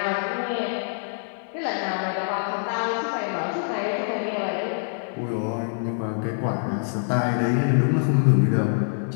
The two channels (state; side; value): silent; right; digital silence